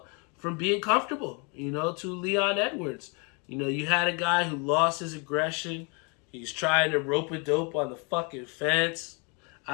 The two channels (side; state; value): right; quieter; 33.5 dB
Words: from being comfortable, to Leon Edwards. You had a guy who lost his aggression. He's trying to rope-a-dope on the fucking fence.